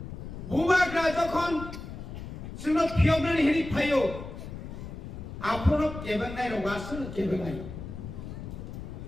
बुबाग्रा जखन जोंनो फियबनानै हेरि फायो आपनो केबेंनाय रगासनो केबेंनाय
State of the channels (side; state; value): left; noise; rumble, 10 dB below the sound